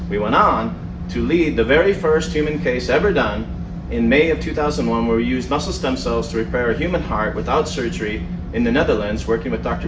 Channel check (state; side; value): identical; both; correlation 1.00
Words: We went on to lead the very first human case ever done in May of 2001, where we used muscle stem cells to repair a human heart without surgery in the Netherlands, working with Dr.